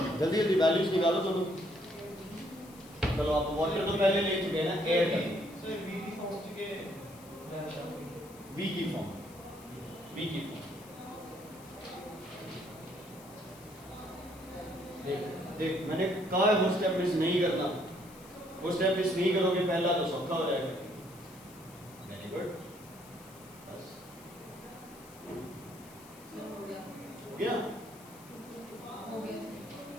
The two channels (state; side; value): noise; left; hiss, 21 dB below the sound